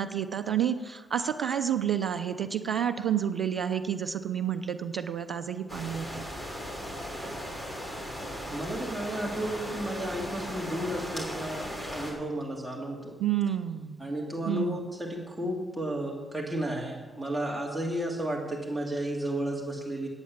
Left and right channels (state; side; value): quieter; left; 4.2 dB